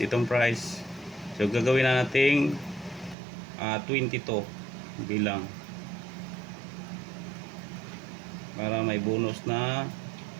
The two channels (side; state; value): left; drops out; at 3.2 s